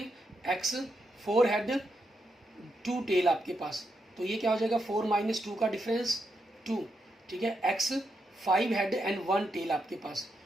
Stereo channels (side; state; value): both; normal; correlation 0.82